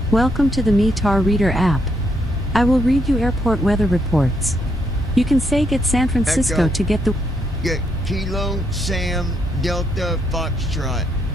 Welcome to the METAR Reader app. I will read you airport weather reports. You can say get San Francisco Echo. to get the Get Kilo Sam Delta Foxtrot.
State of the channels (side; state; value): both; normal; correlation 0.76